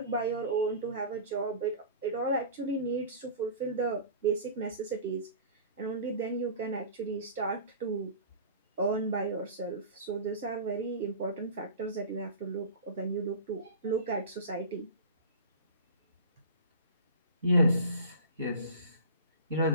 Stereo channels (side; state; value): both; inverted; correlation -0.36